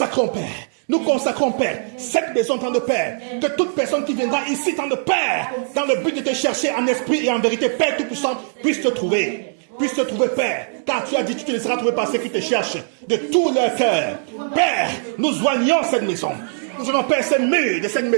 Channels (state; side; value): silent; left; 65 dB below the other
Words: Père, cette maison, temps de Père, que toute personne qui viendra ici, temps de Père, dans le but de te chercher en esprit et en vérité, Père Tout-Puissant, puisse te trouver, Père, car tu as dit, tu te laisseras trouver par ceux qui te cherchent de tout leur cœur. Père, nous joignons cette maison. Nous allons, Père, ces murs de cette